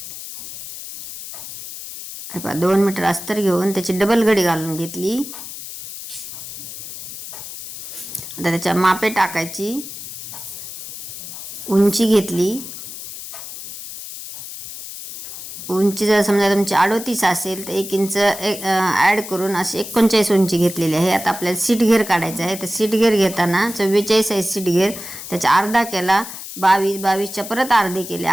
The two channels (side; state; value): left; noise; hiss, 11 dB below the sound